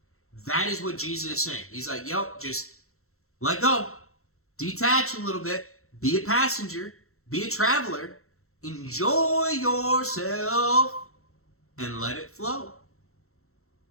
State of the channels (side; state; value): right; late; 0.63 ms